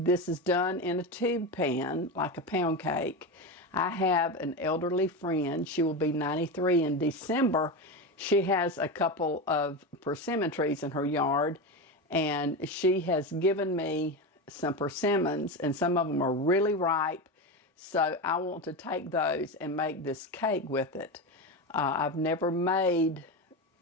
is done in a tube pan, like a pound cake. I have an elderly friend. She will be 93 in December. She has a couple of persimmon trees in her yard, and she has given me some persimmons, and some of them are really ripe. So I want to take those and make this cake with it. I've never made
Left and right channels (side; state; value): both; normal; correlation 0.19